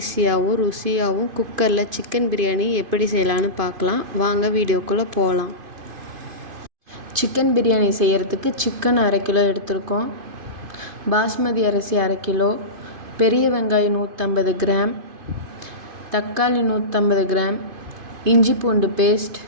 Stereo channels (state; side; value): late; left; 2.5 ms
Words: ருசியாகவும் குக்கரில் சிக்கன் பிரியாணி எப்படி செய்யலான்னு பார்க்கலாம். வாங்க வீடியோக்குள்ளே போகலாம். சிக்கன் பிரியாணி செய்கிறதுக்கு சிக்கன் 1/2 கிலோ எடுத்திருக்கோம். பாஸ்மதி அரிசி 1/2 கிலோ, பெரிய வெங்காயம் 150 கிராம், தக்காளி 150 கிராம், இஞ்சி பூண்டு பேஸ்ட்,